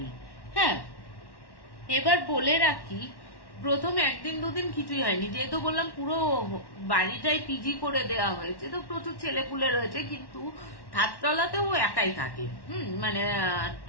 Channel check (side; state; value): right; late; 1.1 ms